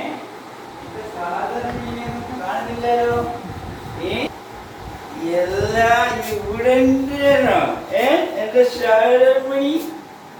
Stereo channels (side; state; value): both; identical; correlation 1.00